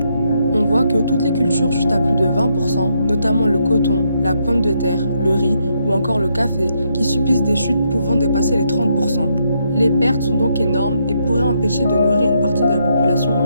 On voit que toutes les cultures chutent à plus de 20%, notamment le coton, la pomme de terre, le riz ou encore le café, qui subissent des chutes pouvant dépasser les 30%. Les pertes sont donc énormes et pourraient empêcher de nourrir une partie de la population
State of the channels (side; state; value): both; inverted; correlation -0.77